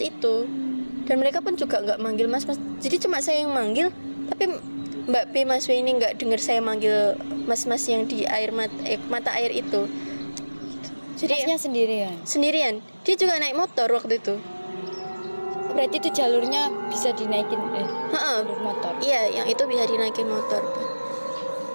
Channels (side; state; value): both; inverted; correlation -1.00